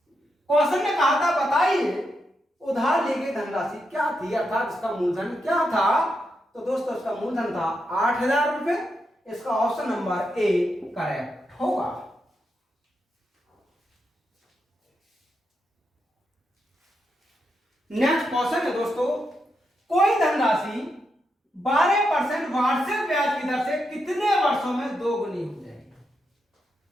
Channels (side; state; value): both; normal; correlation 0.84